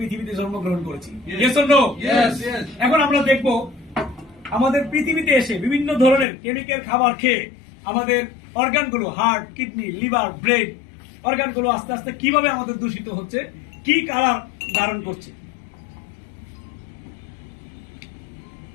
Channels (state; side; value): drops out; right; at 6.2 s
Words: জন্মগ্রহণ করেছি। Yes or no? Yes. এখন আমরা দেখব আমাদের পৃথিবীতে এসে বিভিন্ন ধরনের কেমিক্যাল খাবার খেয়ে আমাদের অর্গানগুলো, হার্ট, কিডনি, লিভার, ব্রেন অর্গানগুলো আস্তে আস্তে কিভাবে আমাদের দূষিত হচ্ছে, কি কালার ধারণ করছে।